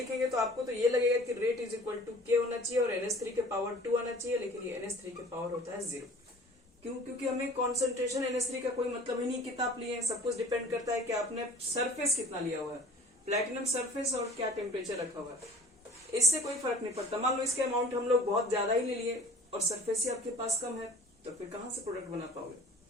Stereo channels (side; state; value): both; normal; correlation 0.48